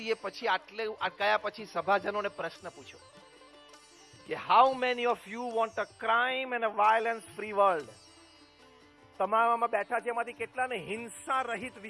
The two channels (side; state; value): both; identical; correlation 1.00